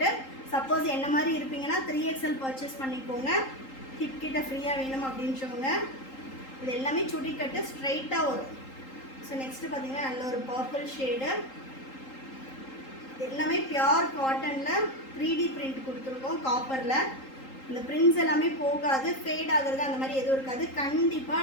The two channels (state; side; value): late; right; 3.8 ms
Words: சப்போஸ் என்ன மாதிரி இருப்பீங்கன்னா 3XL பர்ச்சேஸ் பண்ணிக்கோங்க. ஹிப் கிட்ட ஃப்ரீயாக வேணும் அப்படின்றவங்க. இது எல்லாமே சுடிக்கட்டு ஸ்ட்ரைட்டாக வரும். ஸோ நெக்ஸ்ட்டு பார்த்தீங்கன்னா நல்ல ஒரு பர்பிள் ஷேடு. எல்லாமே பியோர் காட்டனில் 3D பிரிண்ட் கொடுத்துருக்கோம் காப்பரில். இந்த பிரிண்ட்ஸ் எல்லாமே போகாது, ஃபேட் ஆகுறது அந்த மாதிரி எதுவும் இருக்காது.